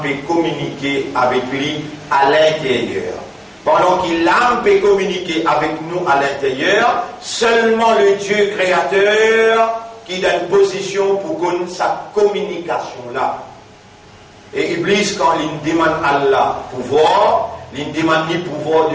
peut communiquer avec lui à l'intérieur. Pendant qu'il l'âme peut communiquer avec nous à l'intérieur, seulement le Dieu créateur qui a une position pour connaître sa communication là. Et Iblis, quand il demande à Allah pouvoir, il demande le pouvoir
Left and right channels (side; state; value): both; identical; correlation 1.00